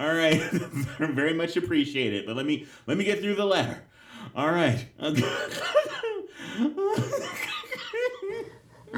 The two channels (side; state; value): both; identical; correlation 1.00